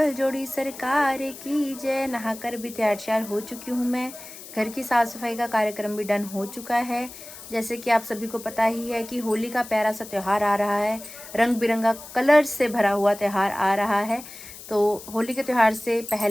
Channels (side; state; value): left; noise; hiss, 15 dB below the sound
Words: जोड़ी सरकार की जय। नहाकर भी तैयार हो चुकी हूँ मैं। घर की साफ सफाई का कार्यक्रम भी डन हो चुका है। जैसे कि आप सभी को पता ही है कि होली का प्यारा सा त्यौहार आ रहा है, रंग बिरंगा कलर से भरा हुआ त्यौहार आ रहा है। तो होली के त्यौहार से